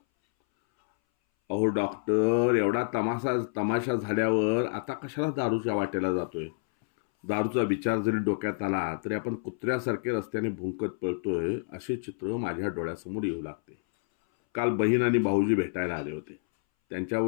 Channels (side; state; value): right; silent; 59 dB below the other